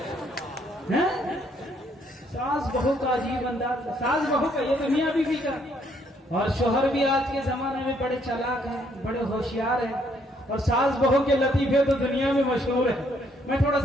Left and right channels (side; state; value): both; normal; correlation 0.69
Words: हैं। सास बहू का अजीब अंदाज, सास बहू का, ये तो मियां बीवी का। और शोहर भी आज के जमाने में बड़े चालाक हैं, बड़े होशियार हैं, और सास बहू के लतीफे तो दुनिया में मशहूर है। मैं थोड़ा